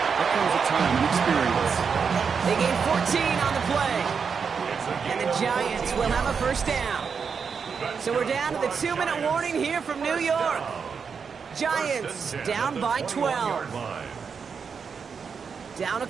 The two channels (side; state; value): left; quieter; 6.0 dB